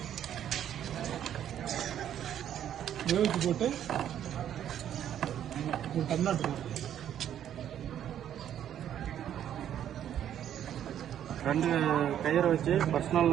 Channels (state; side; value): quieter; left; 10.3 dB